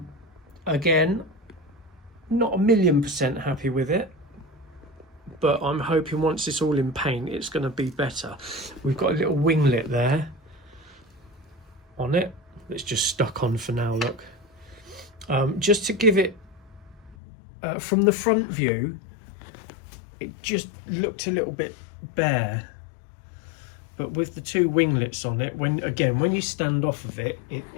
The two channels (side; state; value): right; drops out; at 17.2 s